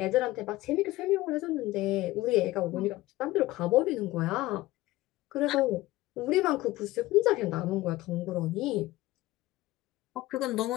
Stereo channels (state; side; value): quieter; right; 17.7 dB